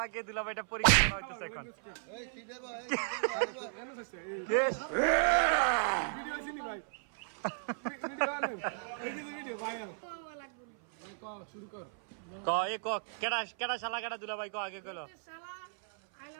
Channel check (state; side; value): silent; left; 54 dB below the other